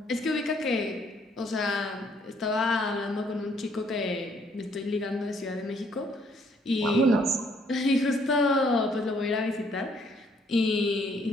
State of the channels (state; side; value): normal; both; correlation 0.66